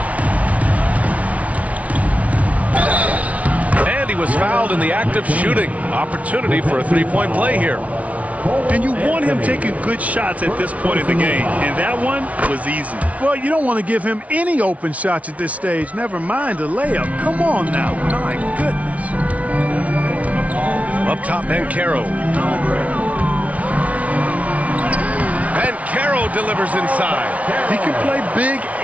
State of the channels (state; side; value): late; left; 0.067 ms